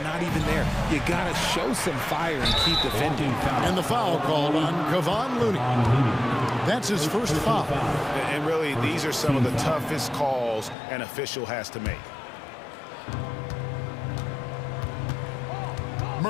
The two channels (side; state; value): right; drops out; at 10.8 s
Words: not even there. You gotta show some fire and keep defending. And the foul called on Kevon Looney. That's his first foul. And really, these are some of the toughest calls an official has to make.